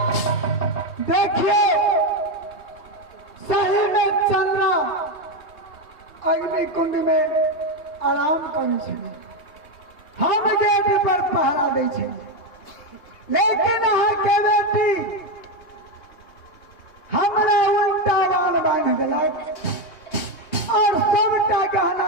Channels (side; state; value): right; late; 2.4 ms